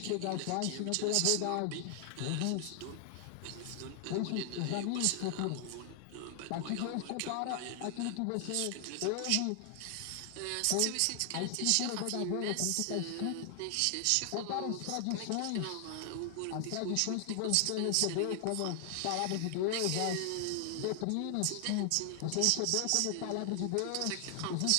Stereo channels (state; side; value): different; both; correlation 0.00